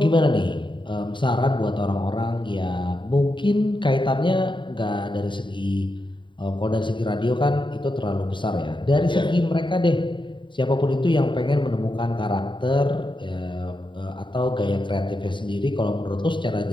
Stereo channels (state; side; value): late; right; 0.23 ms